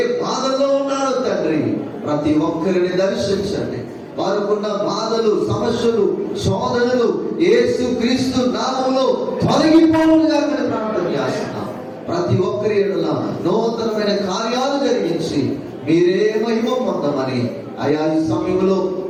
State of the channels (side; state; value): both; identical; correlation 1.00